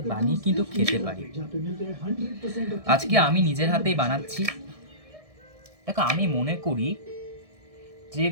বানিয়ে কিন্তু খেতে পারি। আজকে আমি নিজের হাতেই বানাচ্ছি। দেখো, আমি মনে করি যে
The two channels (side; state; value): left; late; 1.6 ms